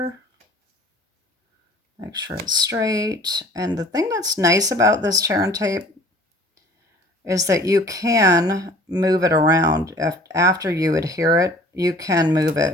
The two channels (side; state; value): both; normal; correlation 0.49